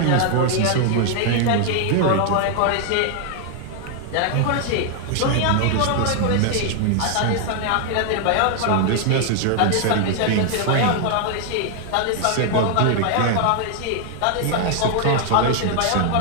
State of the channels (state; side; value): different; both; correlation 0.00